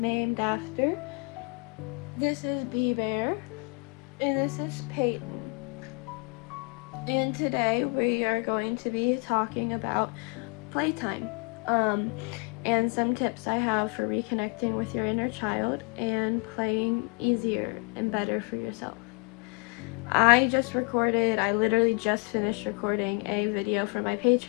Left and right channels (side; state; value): right; quieter; 33.3 dB